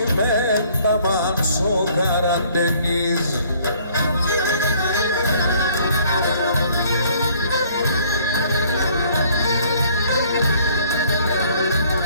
ταμάν στο καραντενίζ.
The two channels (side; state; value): both; inverted; correlation -0.59